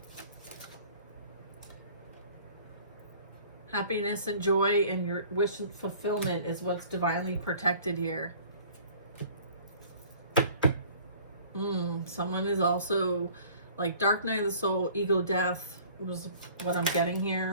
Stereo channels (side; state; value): both; inverted; correlation -0.51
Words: Happiness and joy and your wish and fulfillment is what's divinely protected here. Someone is also like dark night of the soul, ego death was what I'm getting